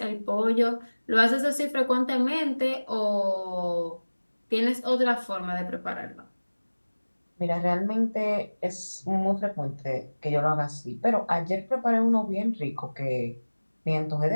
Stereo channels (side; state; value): both; inverted; correlation -1.00